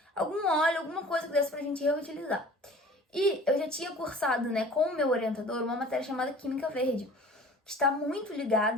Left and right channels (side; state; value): both; normal; correlation 0.45